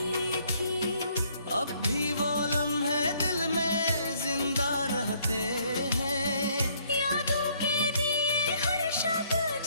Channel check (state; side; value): inverted; both; correlation -0.65